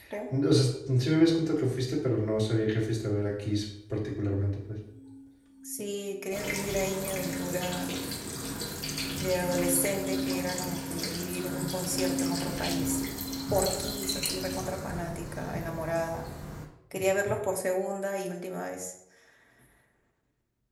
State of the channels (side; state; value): both; identical; correlation 1.00